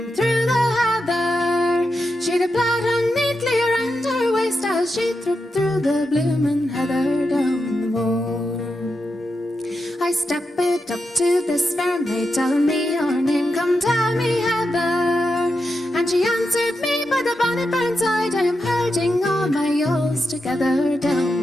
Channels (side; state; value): both; normal; correlation 0.87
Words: through the heather, she'd a plaid on neatly around her waist as she tripped through the bloomin' heather down the moor. I stepped up to this fair maid, tell me your name, come tell me Heather. And she answered me by the bonnet burnside, I am herding all my ewes together